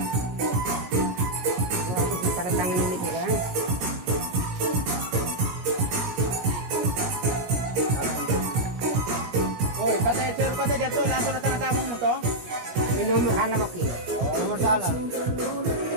nomor salah pakai. Nomor salah.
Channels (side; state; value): left; late; 17 ms